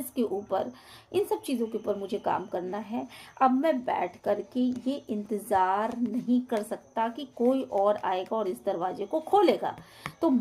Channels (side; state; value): both; identical; correlation 1.00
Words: के ऊपर, इन सब चीज़ों के ऊपर मुझे काम करना है। अब मैं बैठ कर के ये इंतज़ार नहीं कर सकता कि कोई और आएगा और इस दरवाजे को खोलेगा, तो